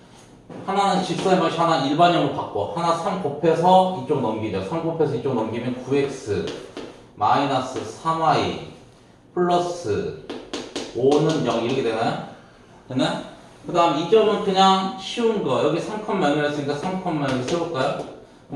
하나는 직선의 방식 하나 일반형으로 바꿔. 하나 3 곱해서 이쪽 넘기죠. 3 곱해서 이쪽 넘기면 9x 마이너스 3y 플러스 5는 0 이렇게 되나요? 됐나요? 그 다음 이 점은 그냥 쉬운 거. 여기 3,0이었으니까 3,0을 세울까요?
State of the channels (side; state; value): both; identical; correlation 1.00